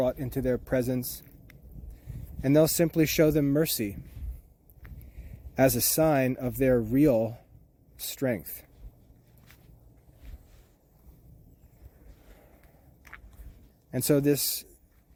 into their presence, and they'll simply show them mercy as a sign of their real strength. And so this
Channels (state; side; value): identical; both; correlation 1.00